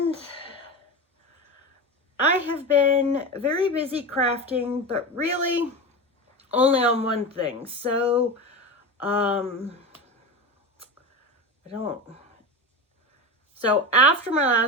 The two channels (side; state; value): both; normal; correlation 0.24